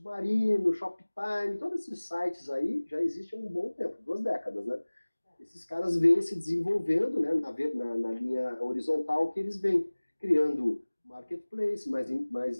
o Shoptime, todos esses sites aí já existem há um bom tempo, 2 décadas, né? Esses caras vêm se desenvolvendo, né, na linha horizontal que eles vêm criando marketplace,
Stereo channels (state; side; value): inverted; both; correlation -1.00